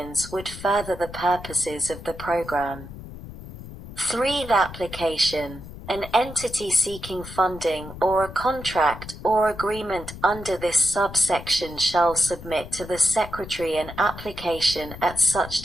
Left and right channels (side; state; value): left; noise; rumble, 13 dB below the sound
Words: would further the purposes of the program. 3. Application. An entity seeking funding or a contract or agreement under this subsection shall submit to the Secretary an application at such